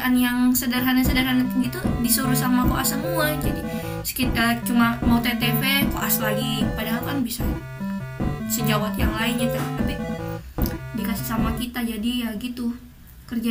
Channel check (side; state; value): both; identical; correlation 1.00